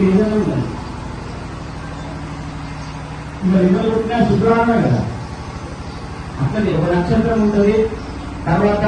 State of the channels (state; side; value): identical; both; correlation 1.00